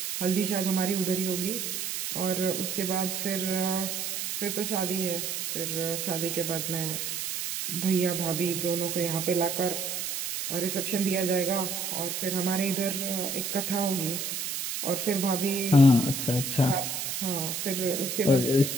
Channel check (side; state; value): right; noise; hiss, 3 dB below the sound